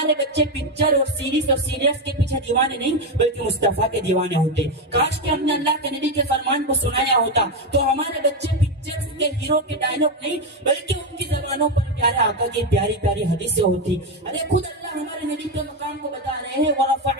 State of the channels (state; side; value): normal; both; correlation 0.09